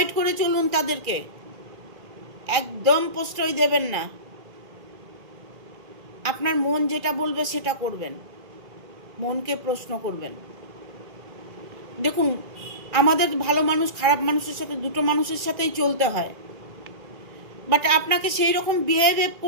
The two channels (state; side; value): late; left; 1.9 ms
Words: করে চলুন তাদেরকে, একদম প্রশ্রয় দেবেন না। আপনার মন যেটা বলবে সেটা করবেন, মনকে প্রশ্ন করবেন। দেখুন আমাদের ভালো মানুষ খারাপ মানুষের সাথে দুটো মানুষের সাথেই চলতে হয়, বাট আপনাকে সেই রকম বিহেভ